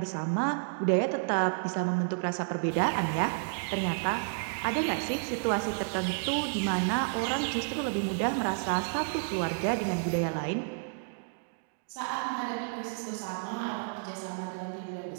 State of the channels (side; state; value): left; silent; digital silence